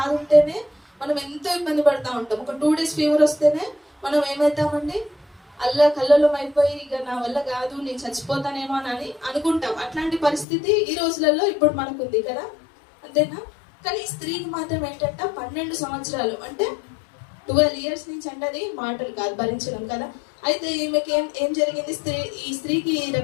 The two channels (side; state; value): right; drops out; at 10.5 s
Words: ఉంటేనే మనం ఎంతో ఇబ్బంది పడతా ఉంటాం. ఒక 2 days ఫీవర్ వస్తేనే మనం ఏమవుతామండి, కల్లోలం అయిపోయి ఇక నా వల్ల కాదు, నేను చచ్చిపోతానేమో అని అనుకుంటాం. అట్లాంటి పరిస్థితి ఈ రోజులలో ఇప్పుడు మనకుంది కదా, అంతేనా? కానీ ఈ స్త్రీకి మాత్రం ఏంటంటే 12 సంవత్సరాలు అంటే 12 years నుంచి అంటే అది మాటలు కాదు, భరించడం కదా. అయితే ఈమెకి ఏం జరిగింది, ఈ స్త్రీకి